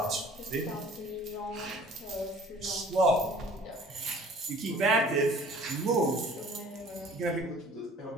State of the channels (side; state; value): both; normal; correlation 0.50